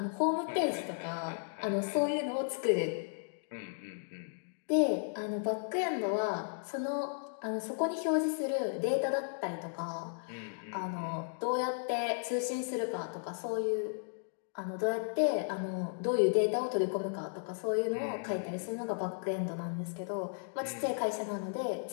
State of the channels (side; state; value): right; silent; digital silence